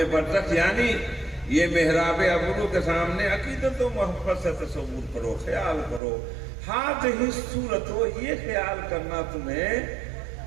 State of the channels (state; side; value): drops out; left; at 6.0 s